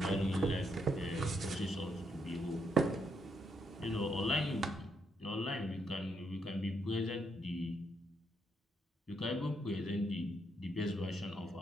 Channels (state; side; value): normal; both; correlation 0.77